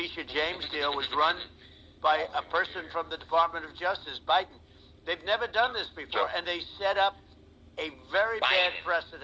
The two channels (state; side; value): identical; both; correlation 1.00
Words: James deal was run by a person from the Department of Justice, Biden. They've never done this before, and they set up a very bad